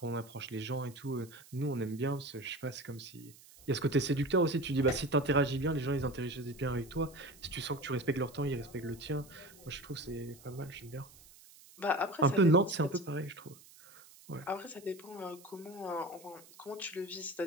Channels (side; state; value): right; noise; hiss, 22 dB below the sound